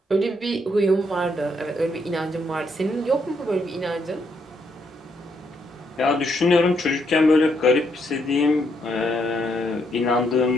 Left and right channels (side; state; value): both; normal; correlation 0.75